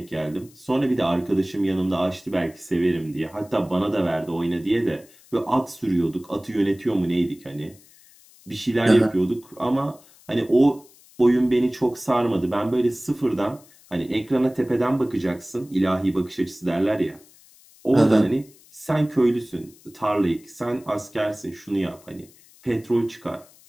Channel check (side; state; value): left; noise; hiss, 26 dB below the sound